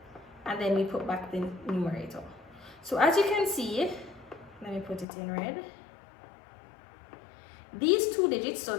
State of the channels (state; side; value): drops out; right; at 5.1 s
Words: and then we put back the numerator. So as you can see, let me put it in red. These two digits, so